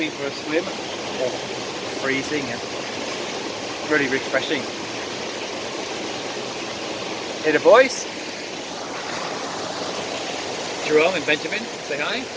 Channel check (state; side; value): identical; both; correlation 1.00